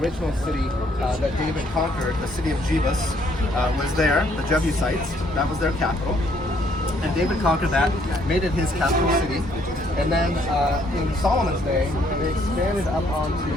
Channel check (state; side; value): normal; both; correlation 0.67